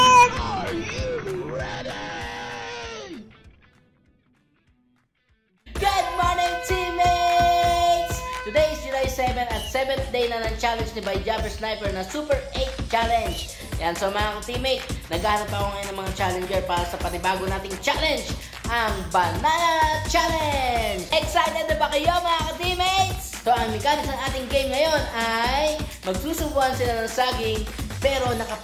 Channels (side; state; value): both; identical; correlation 1.00